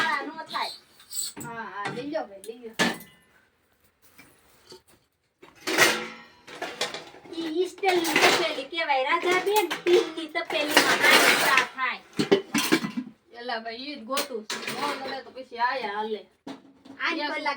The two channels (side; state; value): both; identical; correlation 1.00